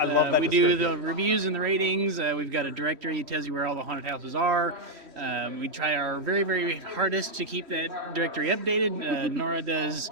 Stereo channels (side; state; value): left; late; 3.1 ms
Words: love that We do description. the reviews and the ratings. We've got a directory that tells you where all the haunted houses are. We try our very, very hardest to keep that directory updated. Nora does